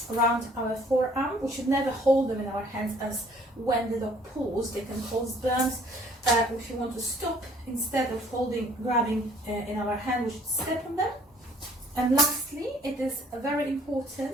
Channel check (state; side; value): normal; both; correlation 0.57